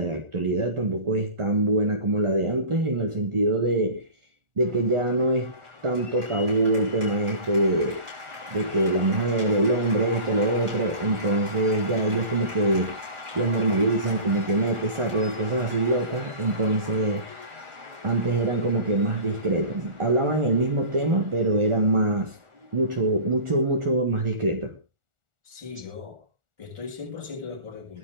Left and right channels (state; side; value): late; left; 1.4 ms